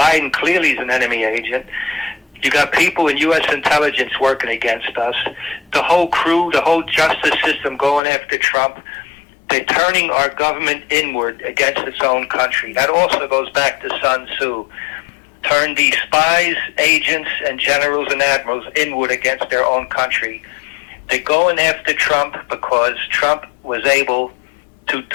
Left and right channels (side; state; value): right; drops out; at 8.0 s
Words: clearly is an enemy agent, you got people in U.S. intelligence working against us, the whole crew, the whole justice system going after Trump. They're turning our government inward against its own country. That also goes back to Sun Tzu. Turn these spies, agents, and generals and admirals inward against their own country. They're going after Trump because Trump was able to